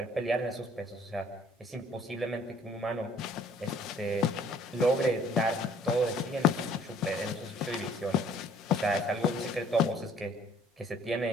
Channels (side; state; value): both; normal; correlation 0.58